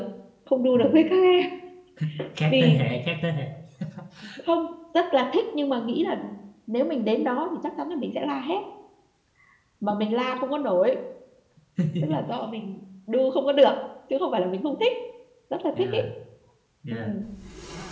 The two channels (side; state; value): both; identical; correlation 1.00